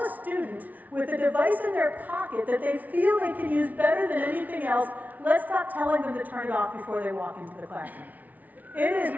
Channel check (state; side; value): late; left; 0.075 ms